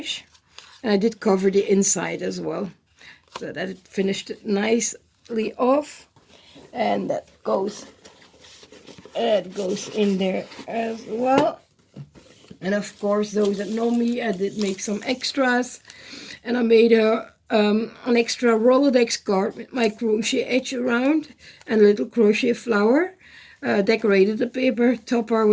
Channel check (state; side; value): identical; both; correlation 1.00